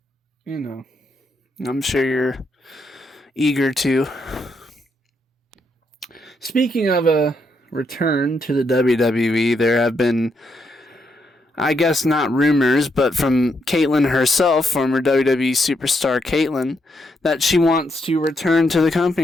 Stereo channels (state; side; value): normal; both; correlation 0.78